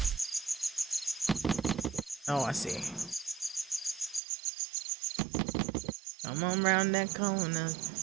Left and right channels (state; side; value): drops out; left; at 4.2 s